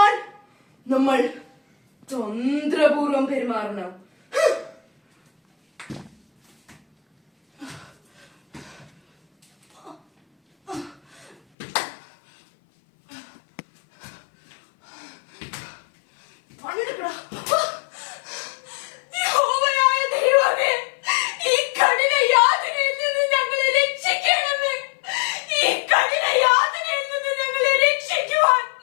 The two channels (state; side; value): drops out; right; at 11.4 s